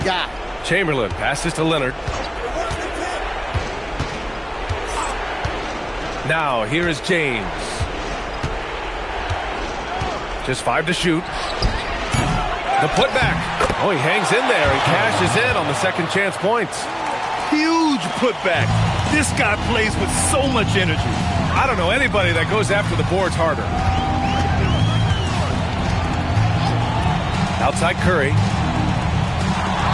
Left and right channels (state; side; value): identical; both; correlation 1.00